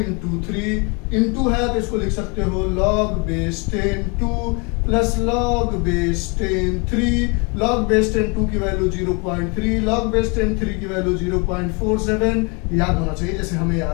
3, इंटू है तो इसको लिख सकते हो log base 10 2 plus log base 10 3, log base 10 2 की वैल्यू 0.3, लॉग बेस 10 3 की वैल्यू 0.47, याद होना चाहिए जैसे हमें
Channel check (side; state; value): right; quieter; 31.6 dB